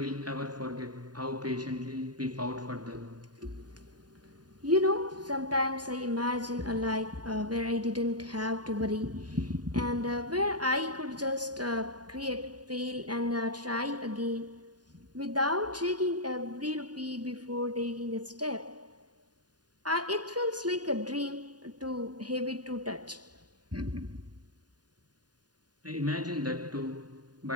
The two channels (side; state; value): left; late; 0.69 ms